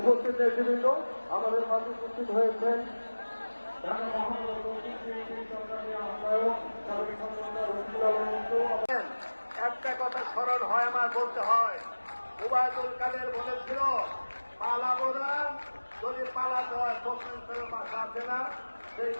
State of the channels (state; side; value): inverted; both; correlation -1.00